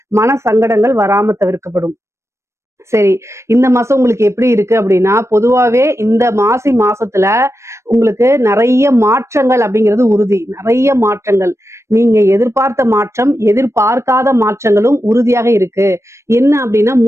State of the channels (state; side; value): late; left; 0.13 ms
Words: மன சங்கடங்கள் வராம தவிர்க்கப்படும். சரி, இந்த மாசம் உங்களுக்கு எப்படி இருக்கு அப்படின்னா, பொதுவாவே இந்த மாசி மாசத்துல உங்களுக்கு நிறைய மாற்றங்கள் அப்படிங்கிறது உறுதி. நிறைய மாற்றங்கள், நீங்க எதிர்பார்த்த மாற்றம், எதிர்பார்க்காத மாற்றங்களும் உறுதியாக இருக்கு. என்ன அப்படின்னா